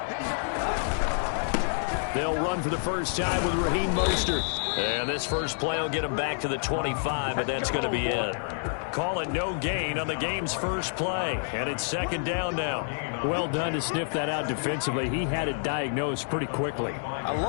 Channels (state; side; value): silent; right; digital silence